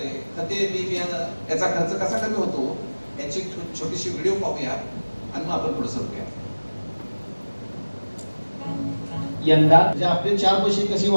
खते, बी बियाणं याचा खर्च कसा कमी होतो याची छोटीशी व्हिडिओ पाहूया आणि मग आपण पुढे सरूया. यंदा जे आपले 4 पैसे कसे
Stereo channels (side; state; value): both; inverted; correlation -1.00